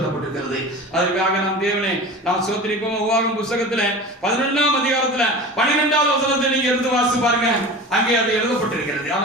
அதற்காக நாம் தேவனை நாம் சோத்திரிப்போம். உபாகமம் புத்தகத்துல 11ஆம் அதிகாரத்துல 12வது வசனத்தை நீங்க எடுத்து வாசிச்சு பாருங்க. அங்கே அது எழுதப்பட்டிருக்கிறது.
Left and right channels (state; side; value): normal; both; correlation 0.34